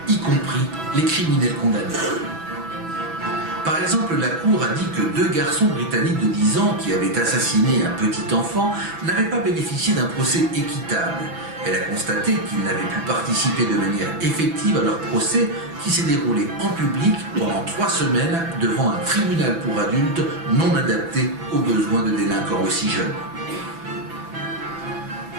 y compris les criminels condamnés. Par exemple, la Cour a dit que 2 garçons britanniques de 10 ans qui avaient assassiné un petit enfant n'avaient pas bénéficié d'un procès équitable. Elle a constaté qu'ils n'avaient pu participer de manière effective à leur procès qui s'est déroulé en public pendant 3 semaines devant un tribunal pour adultes non adapté aux besoins de délinquants aussi jeunes.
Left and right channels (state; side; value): late; left; 6.0 ms